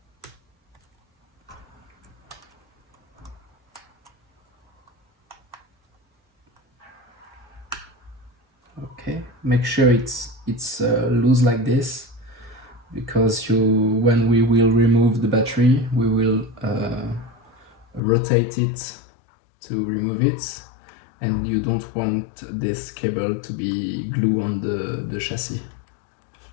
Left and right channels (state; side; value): drops out; right; at 18.0 s